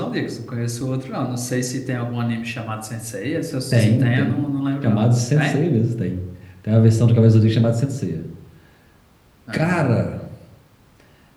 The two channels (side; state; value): both; identical; correlation 1.00